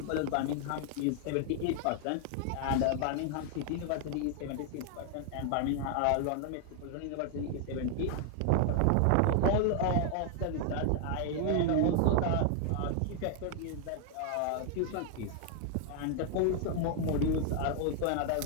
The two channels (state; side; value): different; both; correlation 0.00